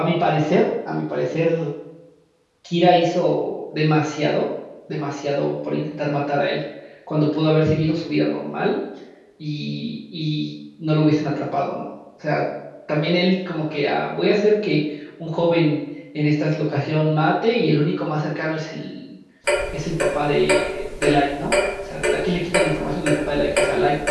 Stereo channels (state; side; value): identical; both; correlation 1.00